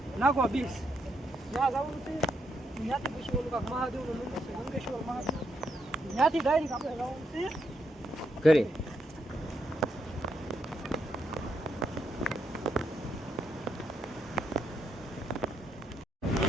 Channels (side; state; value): both; normal; correlation 0.78